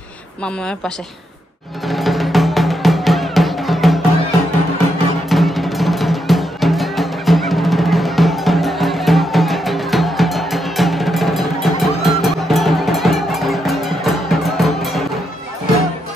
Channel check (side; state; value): both; normal; correlation 0.81